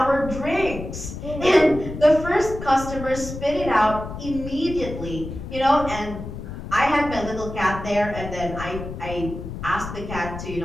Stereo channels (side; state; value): left; noise; rumble, 9 dB below the sound